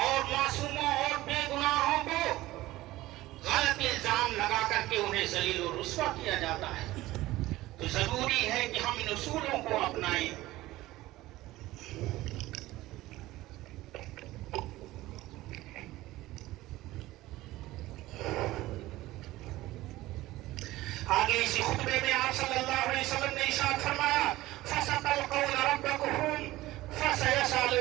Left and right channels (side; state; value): left; quieter; 17.3 dB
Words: मासूमों और बेगुनाहों को गलत इल्जाम लगा करके उन्हें जलील और रुस्वा किया जाता है। तो जरूरी है कि हम इन उसूलों को अपनाएं। आगे इसी खुतबे में आप सल्लल्लाहु अलैहि वसल्लम ने इरशाद फरमाया, फसतलक़ौन रब्बकुम फसयसल